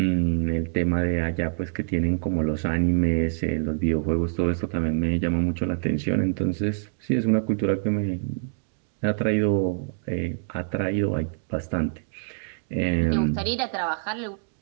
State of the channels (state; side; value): silent; left; digital silence